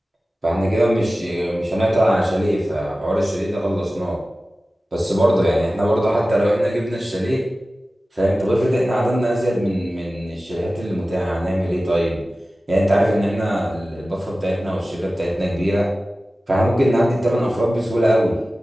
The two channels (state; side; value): normal; both; correlation 0.96